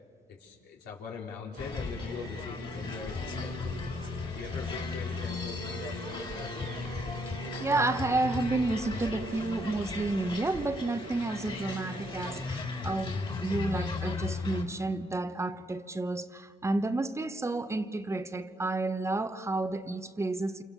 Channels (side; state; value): both; normal; correlation 0.74